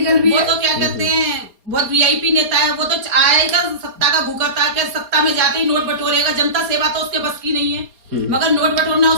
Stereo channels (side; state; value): left; late; 4.3 ms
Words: भी वो है। तो क्या कहते हैं, बहुत वीआईपी नेता है, वो तो आएगा सत्ता का भूखा था कि सत्ता में जाते ही नोट बटोरेगा, जनता सेवा तो उसके बस की नहीं है, मगर नोट बटोरना